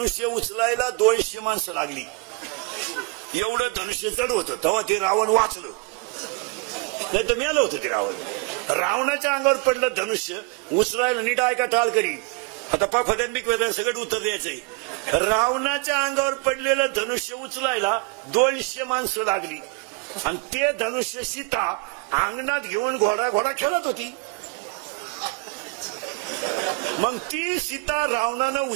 उचलायला 200 माणसं लागली. एवढं धनुष्य जड होतं. तेव्हा ते रावण वाचलं, नाही तर मेलं होतं ते रावण. रावणाच्या अंगावर पडलं धनुष्य उचलायला, नीट ऐका टाळकरी, आता पाफद्यांबिक वेदन सगळं उत्तर द्यायचंय. रावणाच्या अंगावर पडलेलं धनुष्य उचलायला 200 माणसं लागली आणि ते धनुष्य सीता अंगणात घेऊन घोडा खेळत होती. मग ती सीता रावणानं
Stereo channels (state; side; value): quieter; left; 28.7 dB